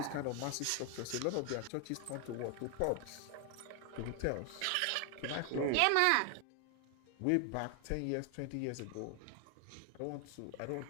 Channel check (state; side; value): different; both; correlation 0.00